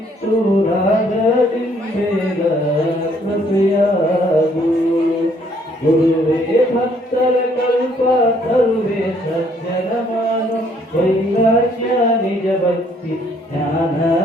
ರಾಗದಿಂಬೇಗ ಕೃಪೆಯಾಗು. ಗುರುವೇ ಭಕ್ತರ ಕಲ್ಪ ತರುವೆ ಸಜ್ಜನ ಮಾನು ವೈರಾಗ್ಯ ನಿಜ ಭಕ್ತಿ ಜ್ಞಾನ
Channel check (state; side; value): normal; both; correlation 0.65